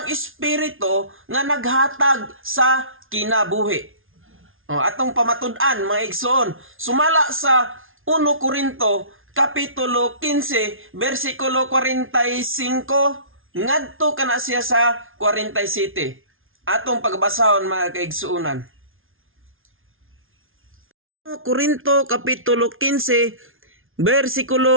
espiritu nga naghatag sa kinabuhi. Atong pamatud-an, mga igsoon, sumala sa 1 Korinto kapitulo 15 bersikulo 45 ngadto kana siya sa 47. Atong pagbasahon, mga kaigsuonan. Korinto kapitulo 15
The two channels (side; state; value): left; late; 0.59 ms